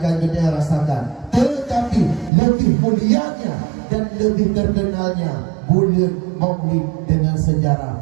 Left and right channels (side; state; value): left; drops out; at 2.3 s